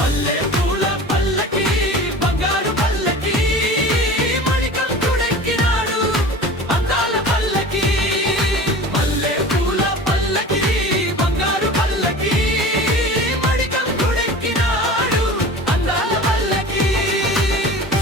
పూల పల్లకి బంగారు పల్లకి మణికంఠుడెక్కినాడు అందాల పల్లకి మల్లె పూల పల్లకి బంగారు పల్లకి మణికంఠుడెక్కినాడు అందాల పల్లకి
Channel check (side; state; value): both; normal; correlation 0.37